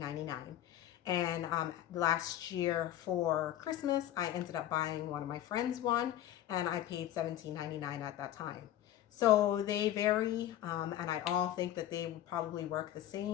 And last year for Christmas, I ended up buying one of my friends one, and I paid $17.99 at that time. So they vary, and I all think that they would probably work the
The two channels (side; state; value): right; quieter; 12.4 dB